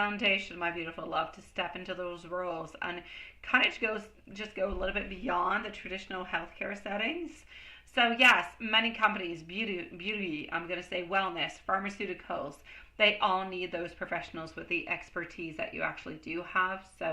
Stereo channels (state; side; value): identical; both; correlation 1.00